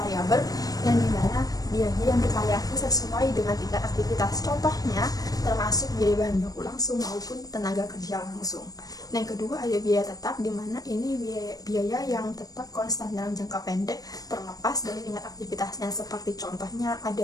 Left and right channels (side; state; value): right; late; 0.18 ms